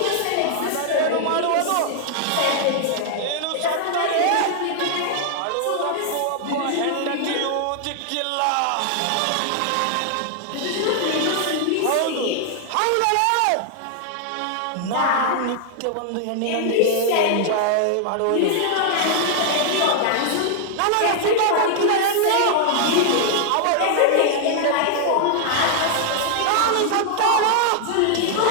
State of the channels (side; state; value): both; different; correlation 0.00